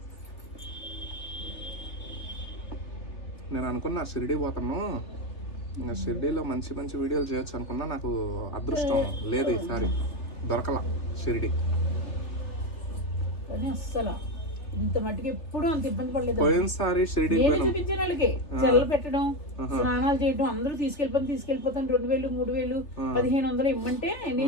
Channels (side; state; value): right; late; 3.3 ms